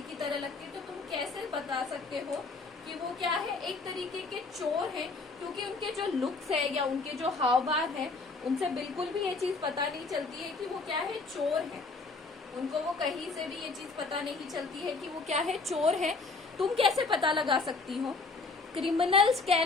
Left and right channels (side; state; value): right; quieter; 3.9 dB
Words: की तरह लगते हैं। तो तुम कैसे बता सकते हो कि वो क्या है, एक तरीके के चोर हैं, क्योंकि उनके जो लुक्स है या उनके जो हाव भाव है, उनसे बिल्कुल भी ये चीज पता नहीं चलती है कि वो क्या है, चोर है। उनको वो कहीं से भी ये चीज पता नहीं चलती है कि वो क्या है, चोर है। तुम कैसे पता लगा सकती हो। Criminals